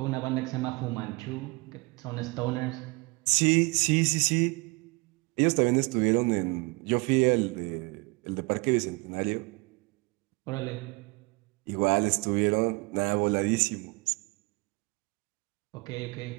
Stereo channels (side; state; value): left; quieter; 26.7 dB